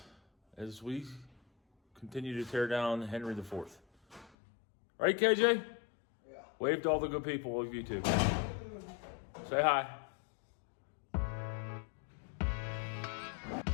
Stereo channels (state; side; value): drops out; right; at 4.4 s